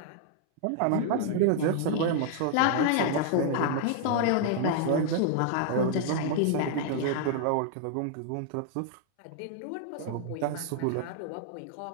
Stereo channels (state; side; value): different; both; correlation -0.01